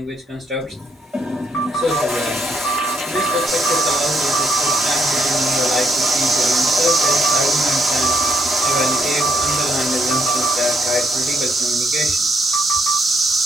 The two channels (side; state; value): both; normal; correlation 0.74